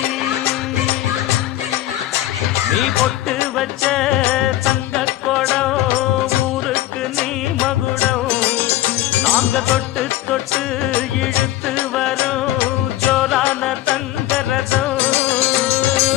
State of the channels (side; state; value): right; quieter; 14.8 dB